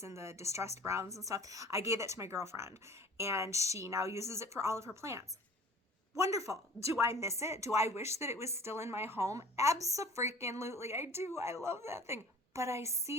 and the distressed browns and stuff. I gave it to my girlfriend, and she now uses it for all of her plants. Wonderful. Do I miss it? Do I wish that it was still in my home? Abso-freaking-lutely. I do. I love that thing. But I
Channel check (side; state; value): both; normal; correlation 0.45